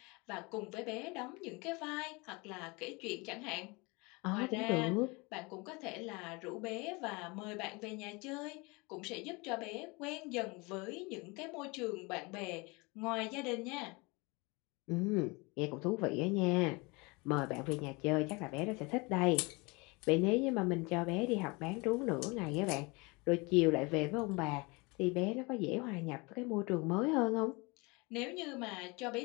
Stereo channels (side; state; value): right; quieter; 26.8 dB